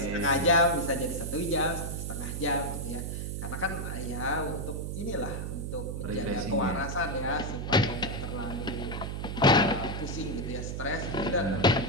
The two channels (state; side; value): noise; right; hum, 4 dB below the sound